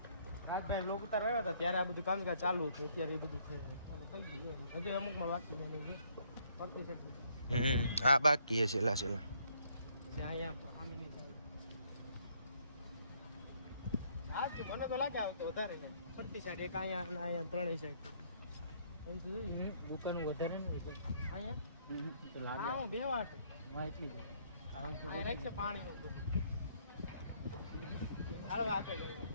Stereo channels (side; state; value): both; inverted; correlation -0.67